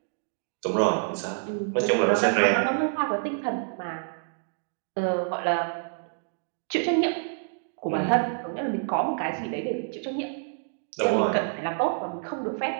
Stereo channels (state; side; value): silent; left; digital silence